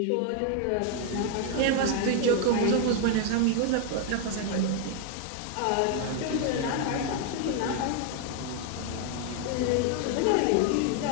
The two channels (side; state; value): both; different; correlation 0.00